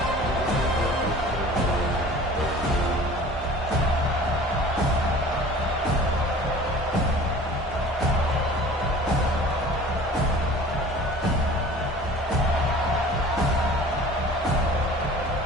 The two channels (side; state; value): both; normal; correlation 0.44